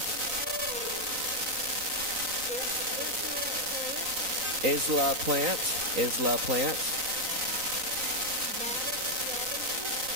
Isla Plant. Isla Plant.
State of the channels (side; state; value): left; late; 3.9 ms